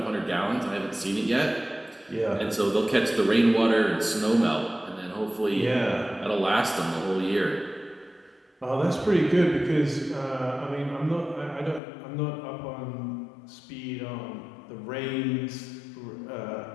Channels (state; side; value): drops out; right; at 11.8 s